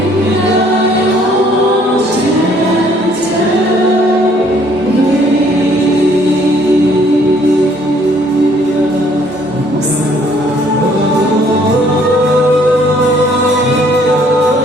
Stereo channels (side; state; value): both; normal; correlation 0.62